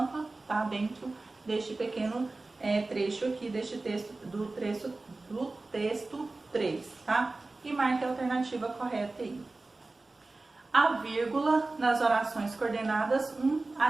tá dentro deste pequeno trecho aqui, deste texto, do texto 3, tá? E marque a alternativa correta aí. A vírgula nas orações coordenadas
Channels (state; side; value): quieter; left; 3.3 dB